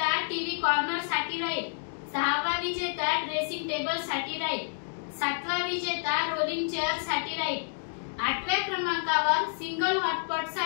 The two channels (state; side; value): silent; right; digital silence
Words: टीव्ही कॉर्नर साठी राहील, सहावा विजेता ड्रेसिंग टेबल साठी राहील, सातवा विजेता रोलिंग चेअर साठी राहील, आठव्या क्रमांकावर सिंगल हॉटपॉट